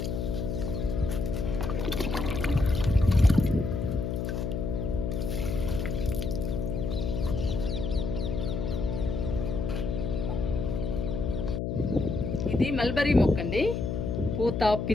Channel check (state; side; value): noise; left; hum, 2 dB below the sound